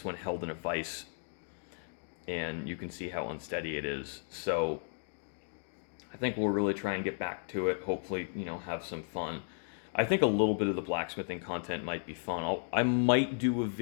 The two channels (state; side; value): silent; right; digital silence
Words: one held in a vise, and you can see how unsteady it is. So I think we'll really try and get back to it. Hopefully, you know, have some fun. I think a little bit of the blacksmithing content might be fun. I might do a